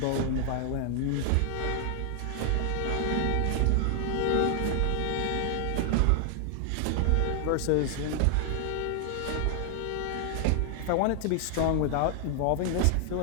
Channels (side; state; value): both; different; correlation 0.00